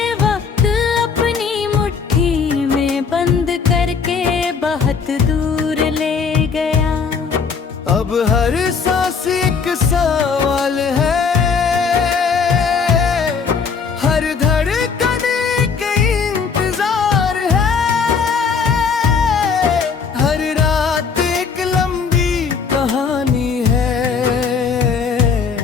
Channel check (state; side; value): quieter; right; 5.7 dB